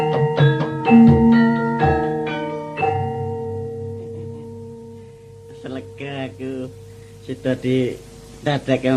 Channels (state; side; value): identical; both; correlation 1.00